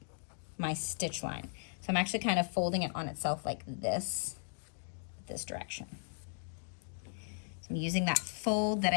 my stitch line. So I'm actually kind of folding it on itself like this direction. So I'm using that fold that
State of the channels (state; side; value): silent; right; digital silence